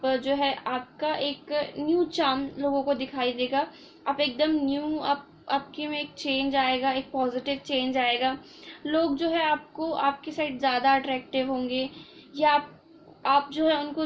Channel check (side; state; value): both; identical; correlation 1.00